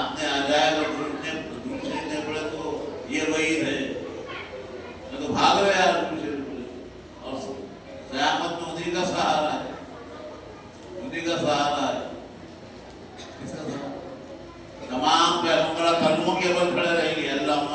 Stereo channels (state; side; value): identical; both; correlation 1.00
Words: آ جائے گا درود شریف نہیں پڑھے تو یہ وعید ہے. میں تو بھاگ رہے یار درود شریف پڑھے. اور قیامت میں انہیں کا سہارا ہے. انہیں کا سہارا ہے. کس کا سہارا؟ تمام پیغمبر کلموں کے اوپر کھڑے رہیں گے. اللہم